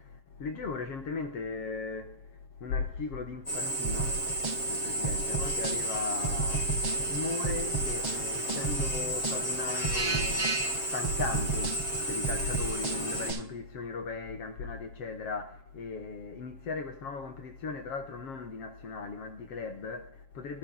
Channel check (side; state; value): right; late; 7.5 ms